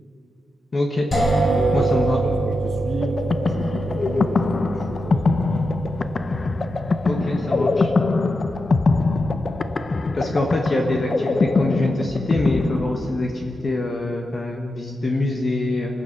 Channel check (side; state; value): both; normal; correlation 0.88